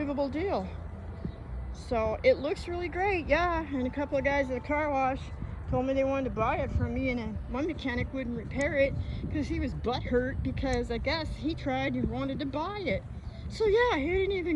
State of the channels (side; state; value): both; identical; correlation 1.00